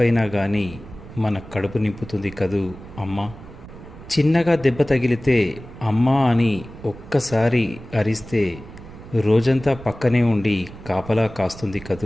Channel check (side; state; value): right; noise; rumble, 16 dB below the sound